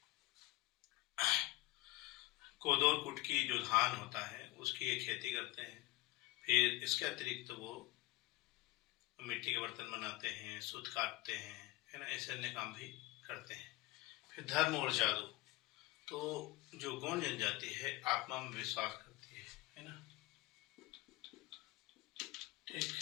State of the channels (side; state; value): right; quieter; 19.3 dB